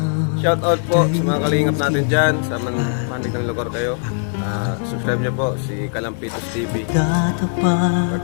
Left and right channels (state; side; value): silent; right; 60 dB below the other